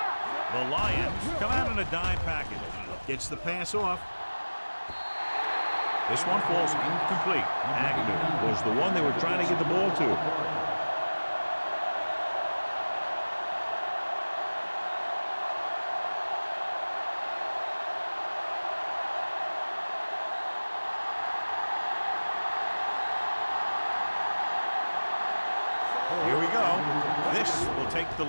The Lions come out in a dime package. Gets the pass off. This one falls incomplete. Agnew was the one they were trying to get the ball to. Here we go. This will take the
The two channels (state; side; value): inverted; both; correlation -1.00